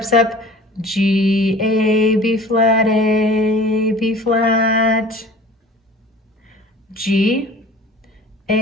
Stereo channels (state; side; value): normal; both; correlation 0.44